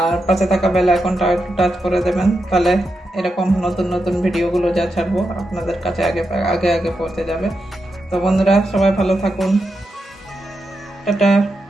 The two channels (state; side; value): normal; both; correlation 0.86